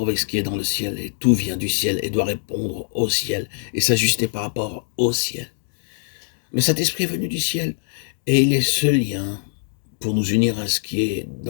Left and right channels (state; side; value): silent; right; digital silence